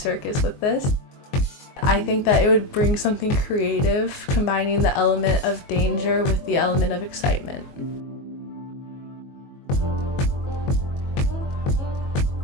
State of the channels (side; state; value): right; late; 22 ms